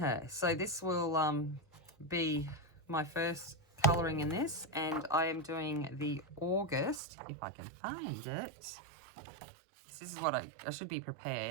So this will be my first colouring in this, and I am doing the August, if I can find it. This is what I should be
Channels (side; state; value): left; drops out; at 7.0 s